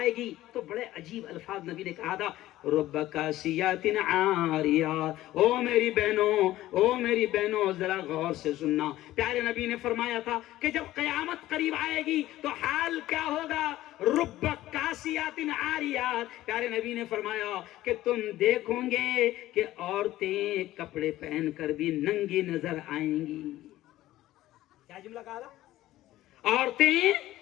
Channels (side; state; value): right; quieter; 15.3 dB